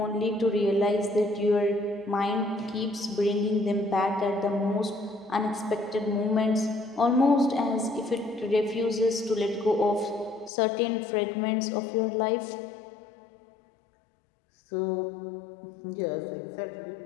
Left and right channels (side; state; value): right; drops out; at 10.5 s